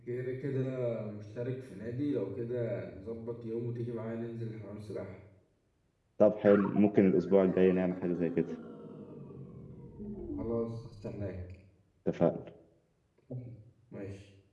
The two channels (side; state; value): both; identical; correlation 1.00